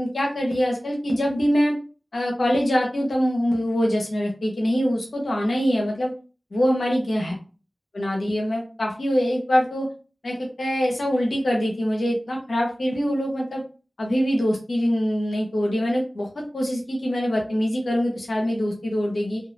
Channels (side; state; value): both; normal; correlation 0.97